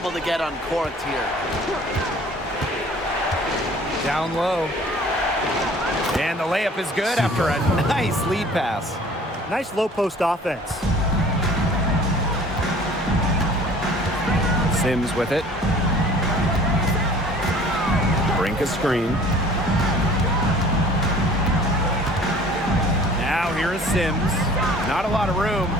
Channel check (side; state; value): both; normal; correlation 0.49